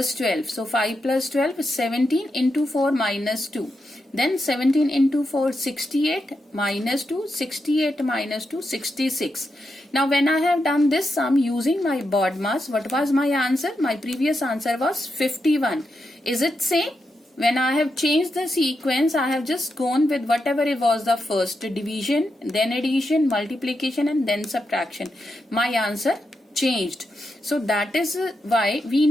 12. So 5 plus 12 is 17 into 4 minus 2. Then 17 into 4, 68 minus 2, 68 minus 2, 66. Now when I have done this sum using my BODMAS, what was my answer? My previous answer was 51. Is it same? When I have changed the sequence, I have just gone with whatever it was the first, division, then addition, multiplication and then subtraction. My answer changed. So that is why we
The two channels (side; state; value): both; normal; correlation 0.85